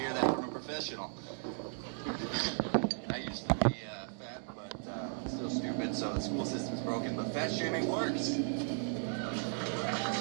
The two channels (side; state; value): left; silent; 54 dB below the other